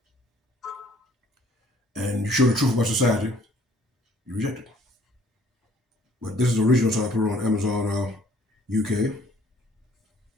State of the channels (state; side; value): normal; both; correlation 0.59